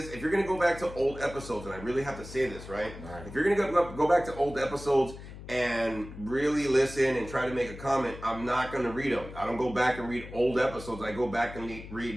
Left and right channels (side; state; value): left; noise; hum, 13 dB below the sound